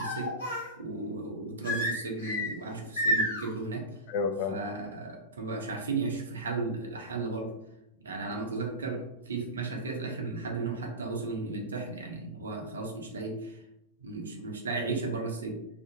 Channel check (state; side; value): normal; both; correlation -0.20